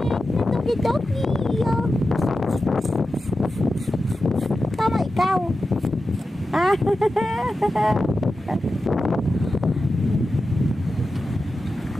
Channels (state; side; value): normal; both; correlation 0.92